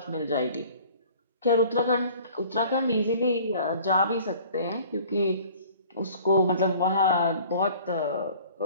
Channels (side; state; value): both; inverted; correlation -0.49